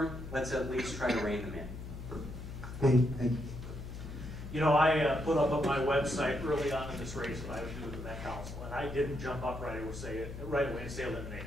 let's at least try to rein them in. Thank you. I put up on my website early on in this race what I would do with the Met Council, and I didn't jump up right away and say eliminate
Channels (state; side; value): noise; left; hum, 9 dB below the sound